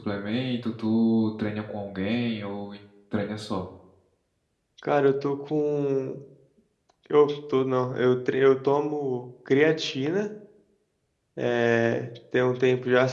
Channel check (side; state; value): both; identical; correlation 1.00